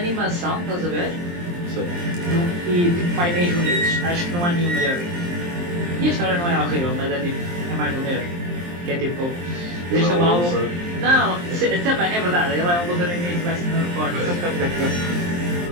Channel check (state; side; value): late; left; 23 ms